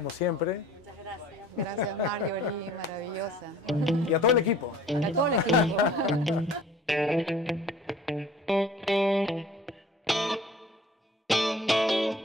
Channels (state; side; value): normal; both; correlation 0.49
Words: siempre. Muchas gracias. Gracias, Marjorie, maravillosa. Y a todo el equipo. A todo el equipo.